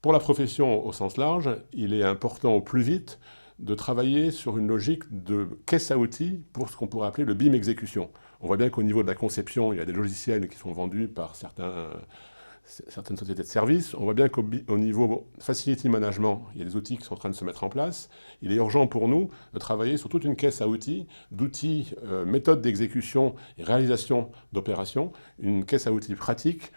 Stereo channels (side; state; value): both; inverted; correlation -1.00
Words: Pour la profession au sens large, il est important au plus vite de travailler sur une logique de caisse à outils pour ce qu'on pourrait appeler le BIM exécution. On voit bien qu'au niveau de la conception, il y a des logiciels qui sont vendus par certaines sociétés de services. On voit bien qu'au niveau facility management, il y a des outils qui sont en train de se mettre en place. Il est urgent pour nous de travailler sur toute une caisse à outils, d'outils, méthodes d'exécution et réalisation d'opérations, une caisse à outils pratique